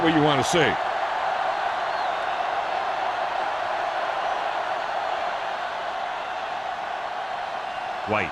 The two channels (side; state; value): both; identical; correlation 1.00